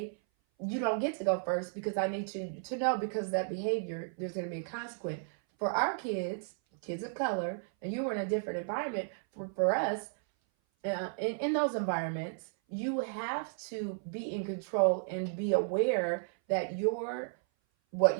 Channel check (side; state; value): left; silent; 55 dB below the other